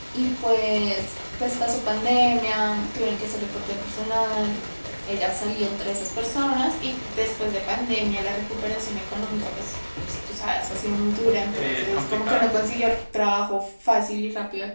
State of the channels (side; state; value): both; inverted; correlation -1.00